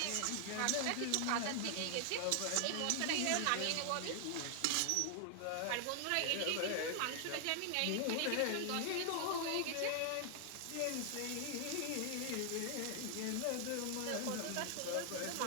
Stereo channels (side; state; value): both; different; correlation 0.00